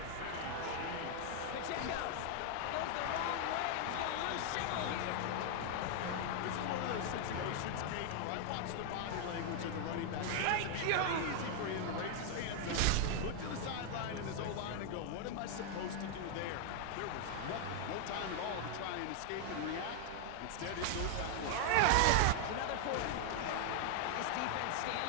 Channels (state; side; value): different; both; correlation 0.00